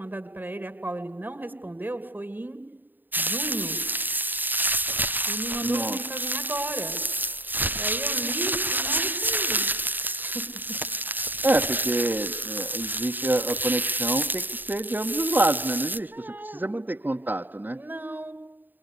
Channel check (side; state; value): left; late; 0.090 ms